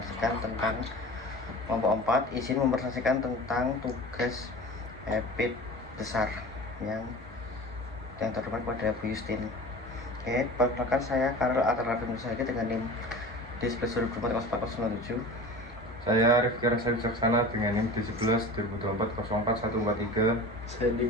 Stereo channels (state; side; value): normal; both; correlation 0.36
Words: tentang kelompok 4 izin mempresentasikan tentang tugas EPIT besar yang terdepan pada Bu Justin. Oke, perkenalkan saya Karel Atarafim Nusagi dengan NIM D11 Saya Rifki Rasa Wicaksana dengan NIM D11 2024 04143. Saya